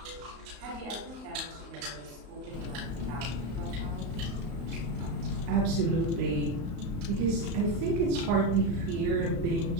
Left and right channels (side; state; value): left; late; 35 ms